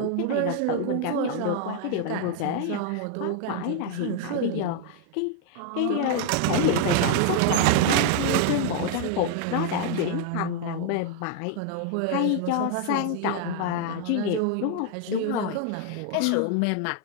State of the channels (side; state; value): both; different; correlation 0.00